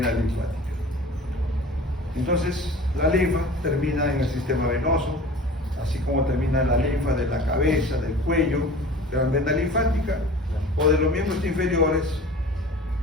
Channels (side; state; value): both; normal; correlation 0.41